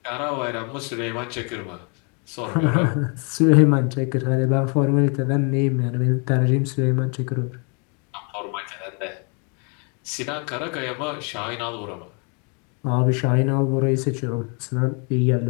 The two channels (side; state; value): right; quieter; 36.1 dB